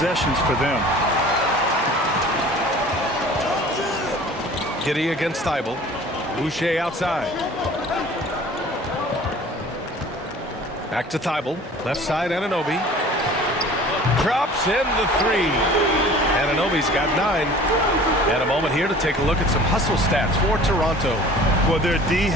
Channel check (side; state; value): both; normal; correlation 0.46